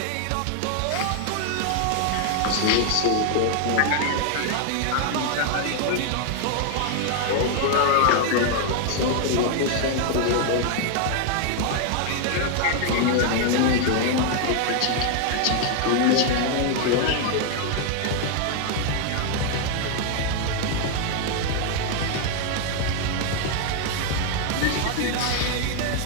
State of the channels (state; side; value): different; both; correlation 0.00